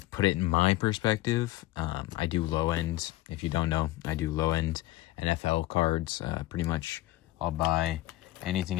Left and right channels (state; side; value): quieter; right; 17.3 dB